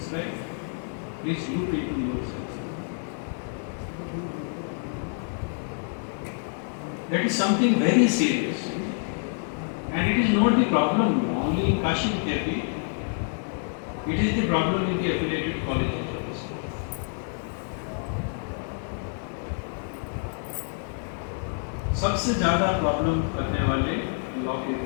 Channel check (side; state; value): right; silent; 60 dB below the other